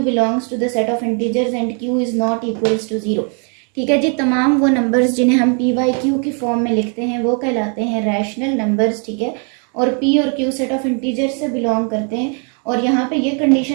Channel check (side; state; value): left; quieter; 39.7 dB